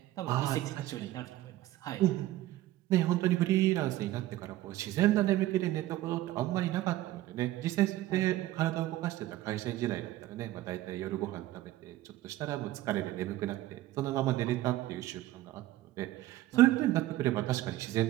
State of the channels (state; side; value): quieter; left; 15.4 dB